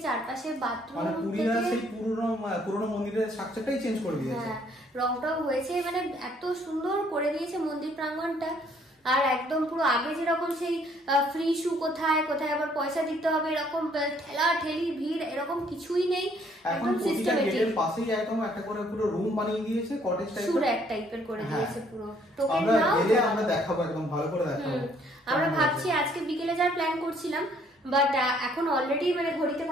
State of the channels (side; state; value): both; normal; correlation 0.64